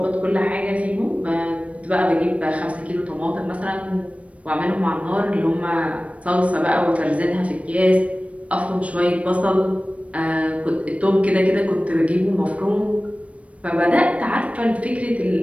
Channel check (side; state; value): left; late; 0.064 ms